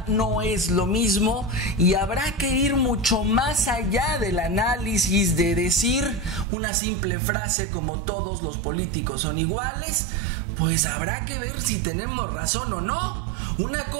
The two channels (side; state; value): left; drops out; at 6.5 s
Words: no es lo mismo y habrá que ir mucho más allá del análisis de decir una simple frase como todos los políticos son iguales. Pues habrá que ver si tenemos razón o no. Una